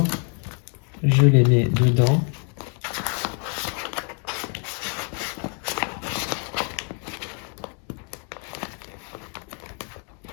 je les mets dedans.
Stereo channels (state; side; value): quieter; right; 40.0 dB